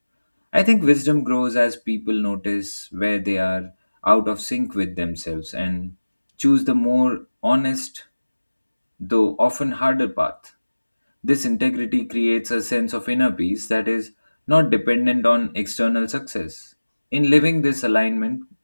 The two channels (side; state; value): both; inverted; correlation -1.00